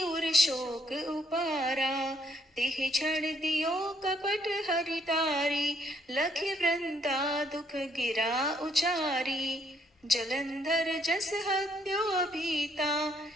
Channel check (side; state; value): both; normal; correlation 0.69